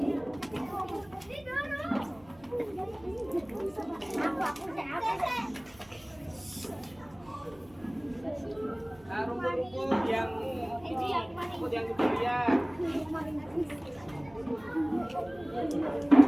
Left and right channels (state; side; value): noise; right; hum, 25 dB below the sound